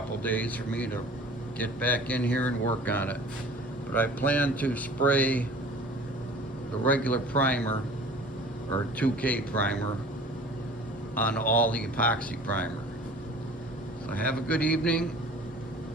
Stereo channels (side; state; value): both; normal; correlation 0.45